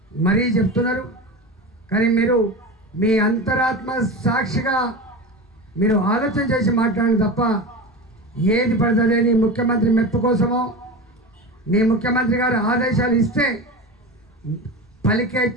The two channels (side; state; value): both; normal; correlation 0.27